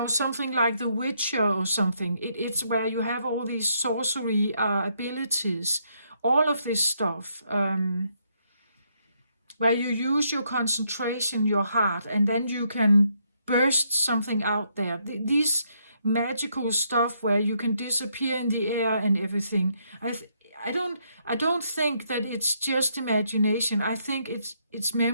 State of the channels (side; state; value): both; inverted; correlation -0.74